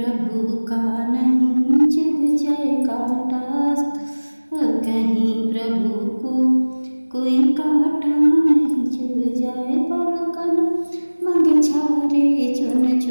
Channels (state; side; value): inverted; both; correlation -1.00